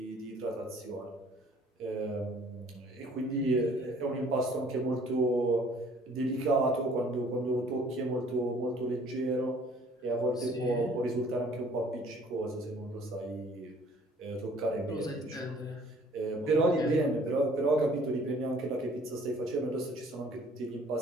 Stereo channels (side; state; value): both; normal; correlation 0.56